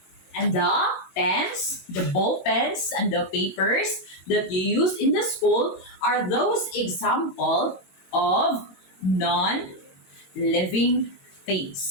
And the pens, the ball pens, and the papers that you use in the school are those example of non-living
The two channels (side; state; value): right; late; 22 ms